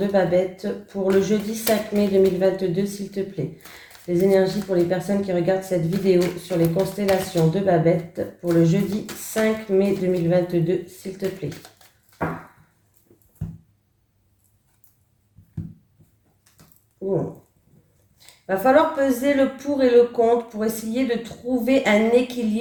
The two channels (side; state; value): both; identical; correlation 1.00